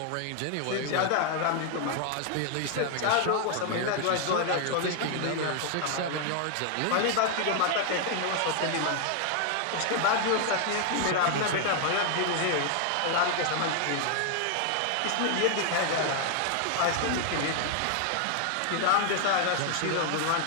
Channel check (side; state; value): both; different; correlation 0.00